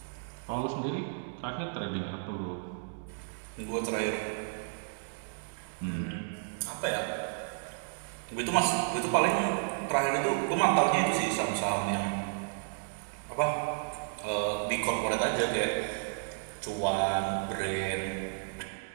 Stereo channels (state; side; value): silent; left; digital silence